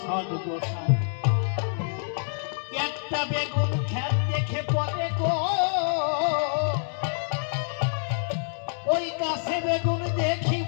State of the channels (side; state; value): right; silent; digital silence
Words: সদ্গোসাই। একটা বেগুন খেত দেখে পথে গো, ওই গাছে বেগুন